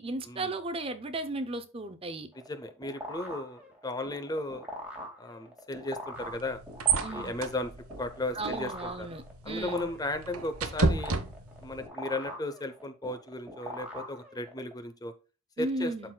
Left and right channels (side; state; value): both; normal; correlation 0.39